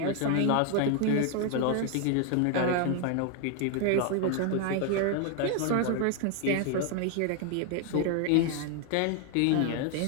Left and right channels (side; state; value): both; different; correlation 0.01